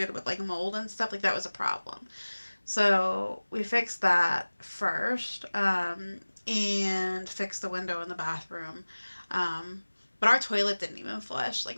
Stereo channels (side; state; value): both; inverted; correlation -1.00